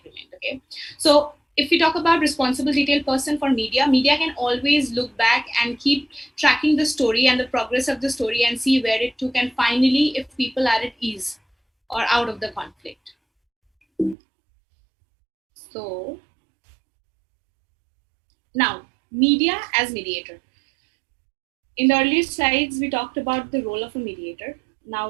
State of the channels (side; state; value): left; drops out; at 14.2 s